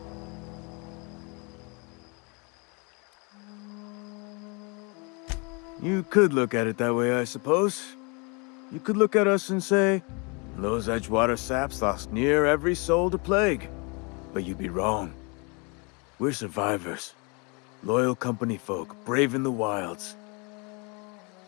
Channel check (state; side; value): quieter; right; 31.5 dB